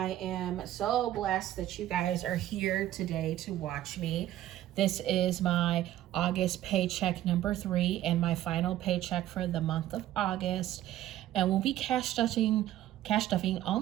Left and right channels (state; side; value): quieter; left; 13.3 dB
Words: am so blessed that you guys are here today to watch me. This is my August paycheck number 3 and my final paycheck for the month of August. And we'll be cash stuffing